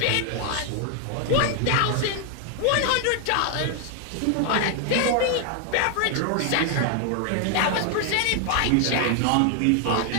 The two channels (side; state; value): both; different; correlation 0.00